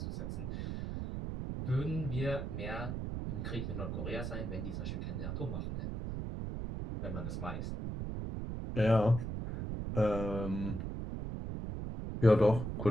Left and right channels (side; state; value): right; noise; rumble, 4 dB below the sound